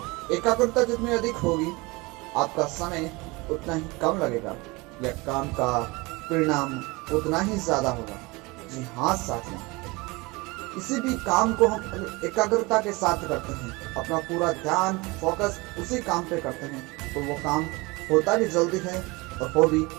एकाग्रता जितनी अधिक होगी आपका समय उतना ही कम लगेगा या काम का परिणाम उतना ही ज्यादा होगा। जी हाँ साथियों, किसी भी काम को हम एकाग्रता के साथ करते हैं, अपना पूरा ध्यान फोकस उसी काम पे करते हैं, तो वो काम होता भी जल्दी है और हो भी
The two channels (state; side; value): quieter; left; 24.4 dB